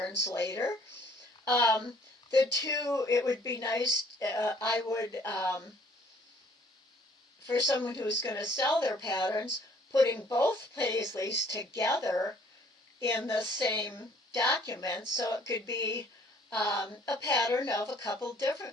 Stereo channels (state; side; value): normal; both; correlation 0.59